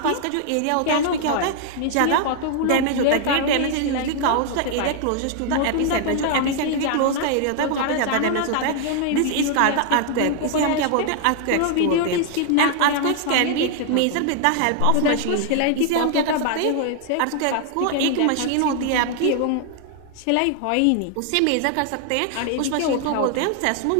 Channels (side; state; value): both; different; correlation 0.00